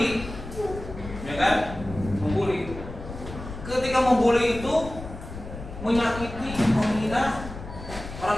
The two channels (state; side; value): noise; left; rumble, 11 dB below the sound